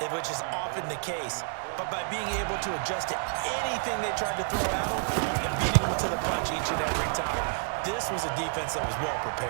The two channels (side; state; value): left; silent; 58 dB below the other